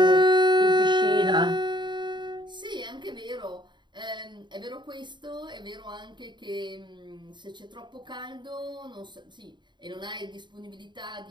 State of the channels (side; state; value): left; late; 0.22 ms